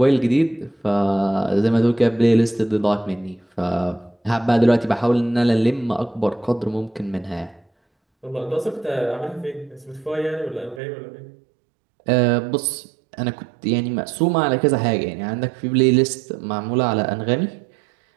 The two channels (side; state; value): left; drops out; at 10.8 s